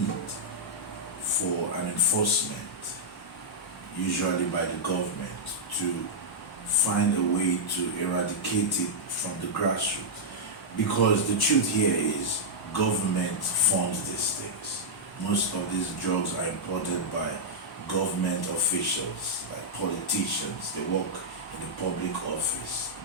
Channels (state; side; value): normal; both; correlation -0.07